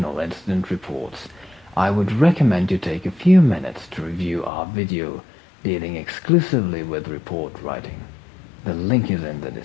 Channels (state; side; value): drops out; right; at 4.5 s